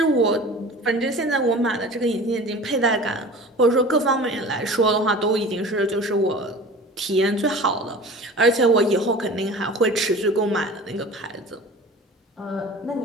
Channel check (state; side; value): normal; both; correlation 0.39